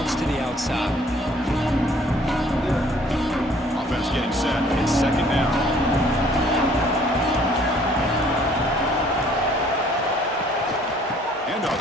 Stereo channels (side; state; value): both; normal; correlation 0.58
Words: to the outside. Offense getting set. It's second down.